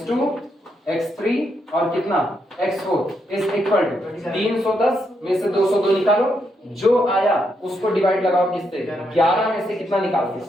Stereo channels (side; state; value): both; normal; correlation 0.79